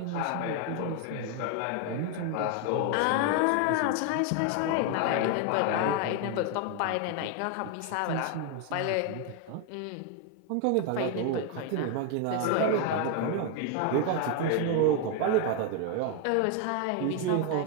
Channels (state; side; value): different; both; correlation 0.01